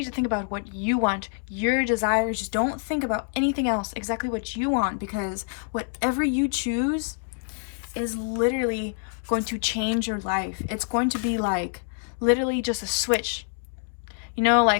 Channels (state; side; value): silent; right; 61 dB below the other